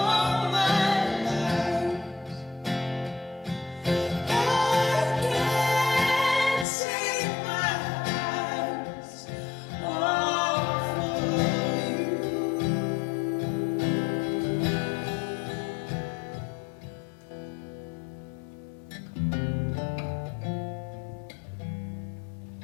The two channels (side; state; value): right; drops out; at 6.7 s